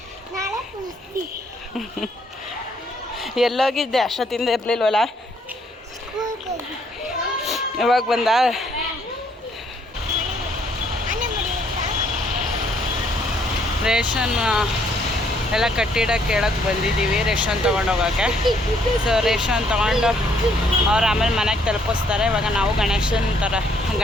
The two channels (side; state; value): both; normal; correlation 0.68